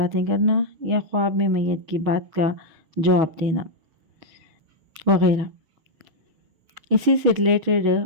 کرنا یا خواب میں میت کی بات کا جواب دینا وغیرہ، اسی سے ریلیٹڈ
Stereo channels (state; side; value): late; left; 6.3 ms